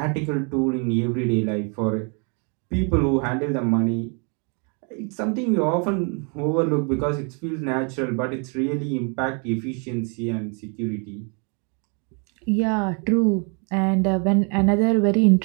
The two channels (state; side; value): quieter; left; 36.9 dB